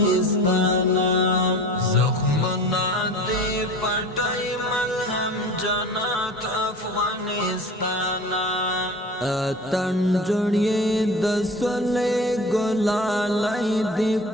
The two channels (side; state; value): both; normal; correlation 0.38